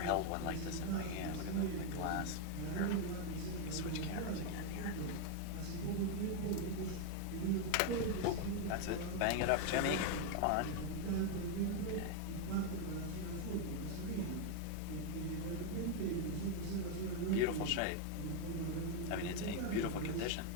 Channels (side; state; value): both; different; correlation 0.01